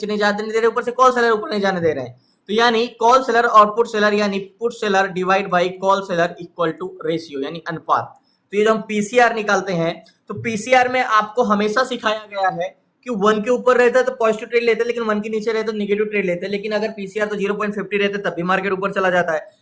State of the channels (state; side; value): identical; both; correlation 1.00